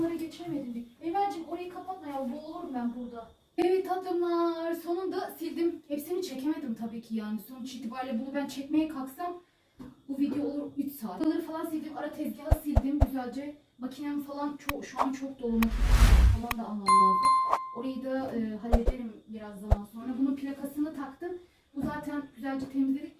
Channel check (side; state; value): both; identical; correlation 1.00